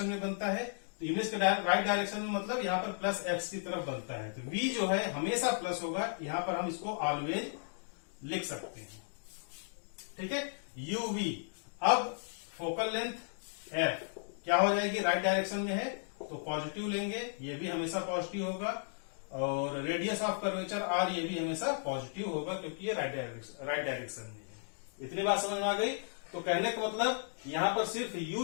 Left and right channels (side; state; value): right; silent; digital silence